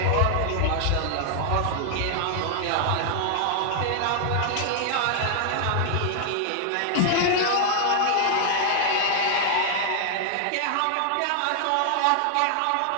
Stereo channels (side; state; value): both; different; correlation 0.00